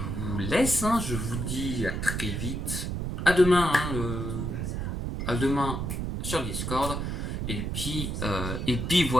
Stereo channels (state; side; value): noise; right; rumble, 3 dB below the sound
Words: vous laisse. Je vous dis à très vite. À demain. À demain sur Discord. Et puis